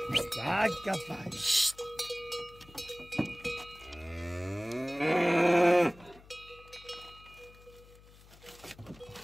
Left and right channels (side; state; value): left; noise; hum, 23 dB below the sound